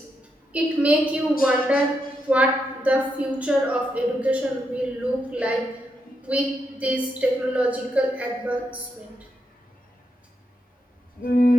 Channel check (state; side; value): normal; both; correlation 0.82